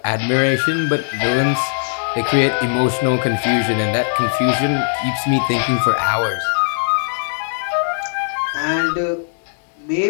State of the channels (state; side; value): silent; right; digital silence